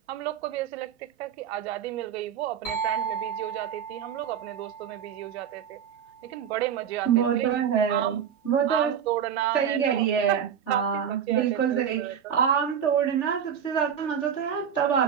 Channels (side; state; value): left; quieter; 8.3 dB